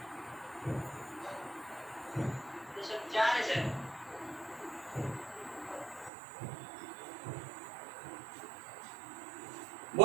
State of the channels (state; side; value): drops out; left; at 6.1 s